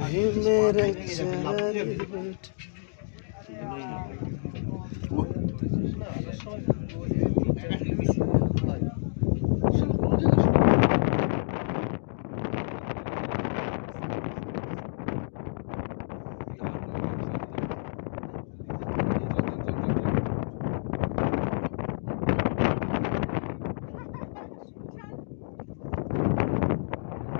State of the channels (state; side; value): silent; right; digital silence